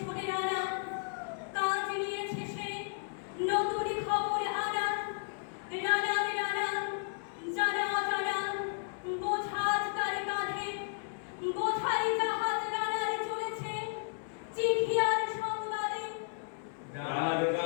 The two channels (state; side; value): silent; right; 55 dB below the other